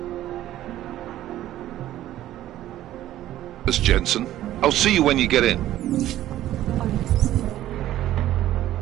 us, Jensen. I'll see you when you get in.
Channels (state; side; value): quieter; left; 13.5 dB